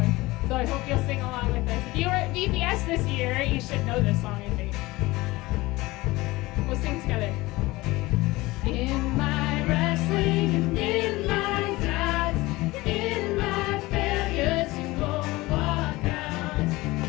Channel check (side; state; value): right; quieter; 20.3 dB